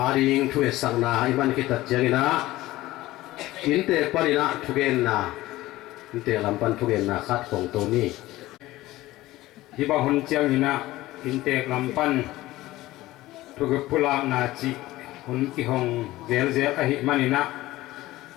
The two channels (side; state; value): right; quieter; 17.3 dB